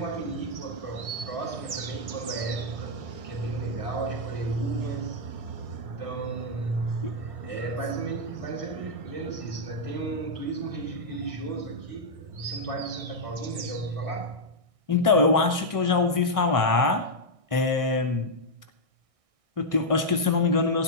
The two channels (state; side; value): late; left; 1.6 ms